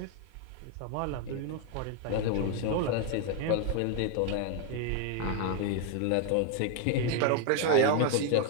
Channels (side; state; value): both; different; correlation 0.01